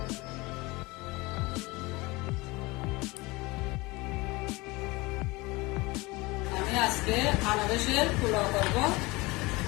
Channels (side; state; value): right; quieter; 23.1 dB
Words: আমি আজকে আনারসের পোলাও করব।